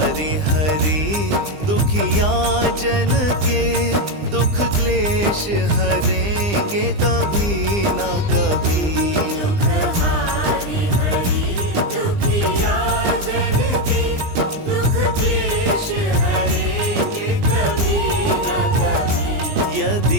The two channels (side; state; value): left; late; 20 ms